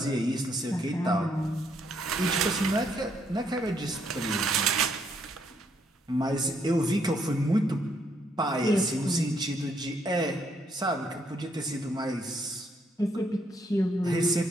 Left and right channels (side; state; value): both; normal; correlation 0.72